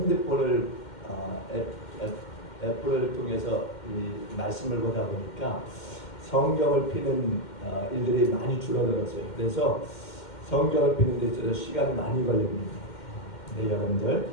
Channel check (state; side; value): late; right; 2.1 ms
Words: 애플을 통해서 이 말씀을 보다 보니까 성경을 피는 일들이 많이 줄어들었어요. 그래서 성경을 피는 데 있어서 시간이 많이 걸립니다. 네, 여러분들